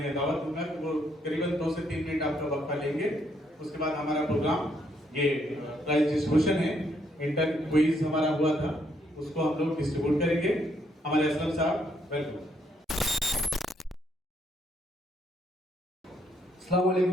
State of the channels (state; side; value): normal; both; correlation 0.72